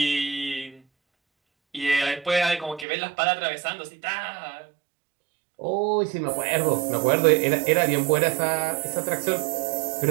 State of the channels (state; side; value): drops out; left; at 2.9 s